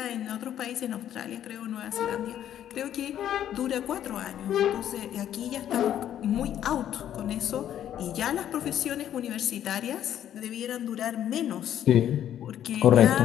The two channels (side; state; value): right; quieter; 10.8 dB